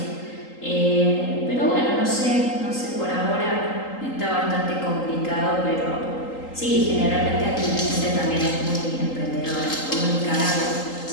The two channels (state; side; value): late; right; 3.8 ms